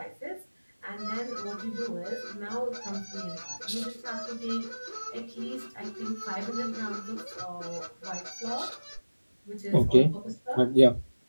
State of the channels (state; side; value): inverted; both; correlation -1.00